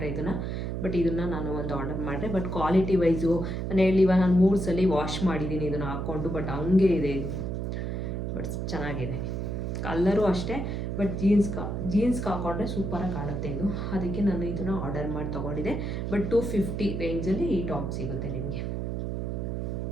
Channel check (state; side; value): noise; right; hum, 2 dB below the sound